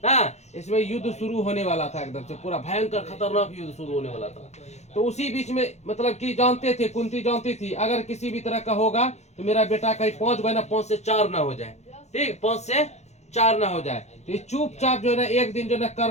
हाँ, इसमें युद्ध शुरू होने वाला था, एकदम से पूरा भयंकर खतरनाक युद्ध शुरू होने वाला था। तो उसी बीच में मतलब कि जानते थे, कुंती जानती थी अगर किसी भी तरह का होगा तो मेरा बेटा कहीं 5 बना 5 से 4 ना हो जाए। ठीक, 5 से 4 ना हो जाए। तो ये चुपचाप जो है ना एक दिन जो है ना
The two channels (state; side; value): late; right; 0.32 ms